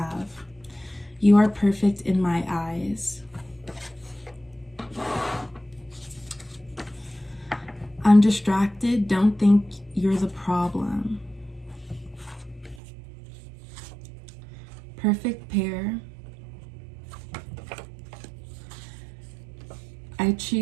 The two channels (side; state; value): left; drops out; at 12.8 s